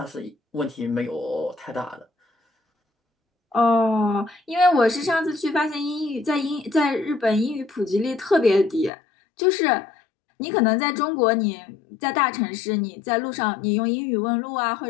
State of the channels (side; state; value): right; drops out; at 8.9 s